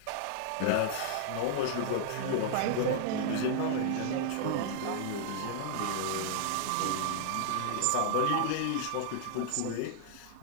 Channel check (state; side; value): different; both; correlation -0.01